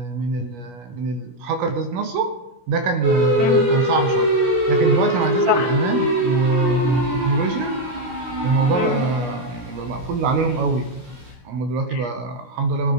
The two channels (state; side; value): late; left; 17 ms